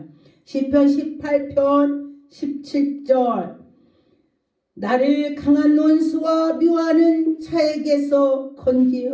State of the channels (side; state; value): both; identical; correlation 1.00